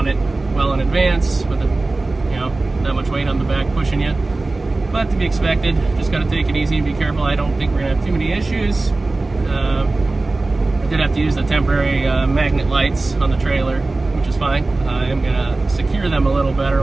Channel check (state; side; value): quieter; left; 3.2 dB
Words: it well in advance with that much weight on the back pushing you. But to be expected, just got to take it easy and be careful. I don't think we're gonna have too many issues. I did have to use the temporary magnet lights on the trailer, which is fine. I am gonna secure them a little